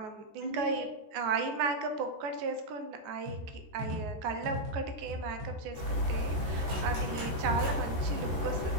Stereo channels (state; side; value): late; left; 13 ms